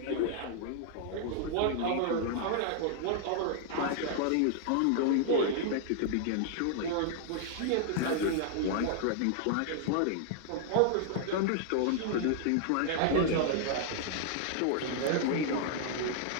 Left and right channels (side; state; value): both; different; correlation -0.01